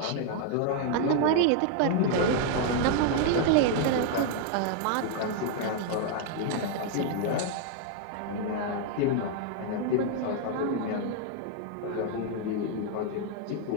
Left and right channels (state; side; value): different; both; correlation 0.00